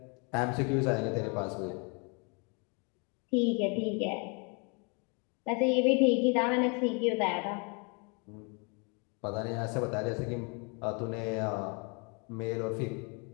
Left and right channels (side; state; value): right; quieter; 33.4 dB